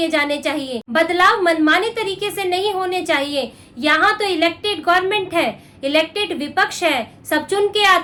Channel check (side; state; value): both; identical; correlation 1.00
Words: जाने चाहिए। बदलाव मनमाने तरीके से नहीं होने चाहिए। यहाँ तो इलेक्टेड गवर्नमेंट है, इलेक्टेड विपक्ष है, सब चुन के